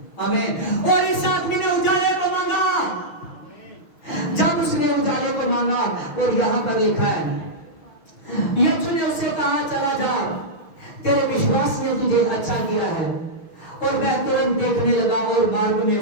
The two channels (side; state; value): right; late; 6.3 ms